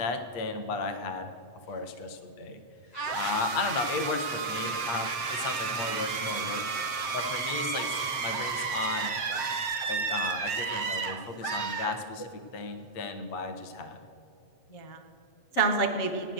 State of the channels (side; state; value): right; late; 7.6 ms